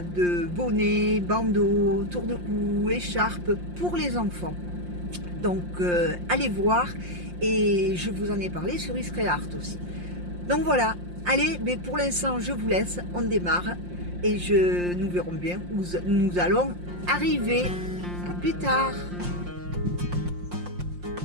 bonnets, bandeaux, tour de cou, écharpe pour les enfants. Donc allez voir. Et je vous en ai parlé sur Iscreart aussi. Donc voilà, allez, mais pour l'instant je vous laisse, on démarre et nous verrons bien où nous allons arriver. À plus tard.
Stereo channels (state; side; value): late; left; 5.7 ms